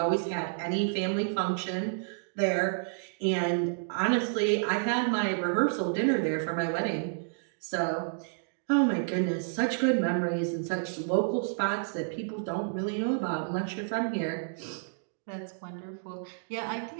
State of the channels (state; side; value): silent; left; digital silence